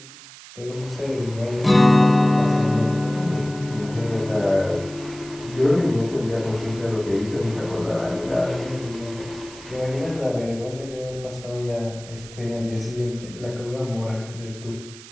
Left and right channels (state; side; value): noise; right; hiss, 17 dB below the sound